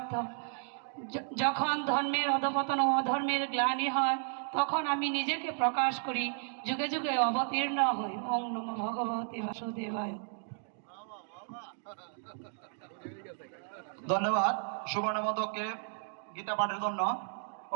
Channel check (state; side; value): silent; left; digital silence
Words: যখন ধর্মের অধপতন ও অধর্মের গ্লানি হয় তখন আমি নিজেকে প্রকাশ করি, যুগে যুগে অবতীর্ণ হই। ওং নমো ভগবতে বাসুদেবায়। ধন্যবাদ সুবর্ণমদককে গীতা পাঠের জন্য।